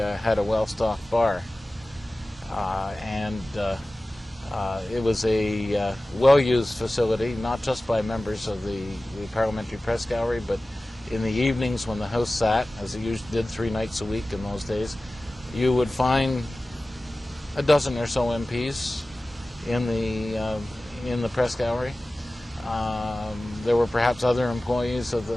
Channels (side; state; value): both; normal; correlation 0.97